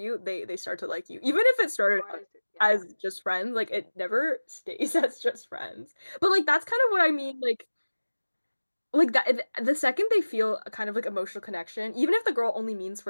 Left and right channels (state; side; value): inverted; both; correlation -1.00